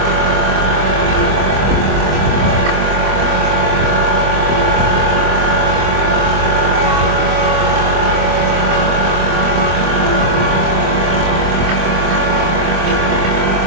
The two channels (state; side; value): late; left; 25 ms